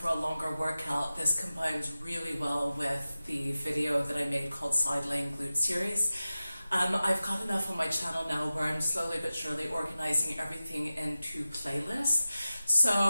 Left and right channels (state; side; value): inverted; both; correlation -0.94